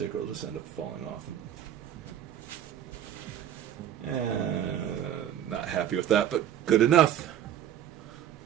will just end up falling off. Not happy with that, but good enough.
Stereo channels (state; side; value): quieter; left; 10.6 dB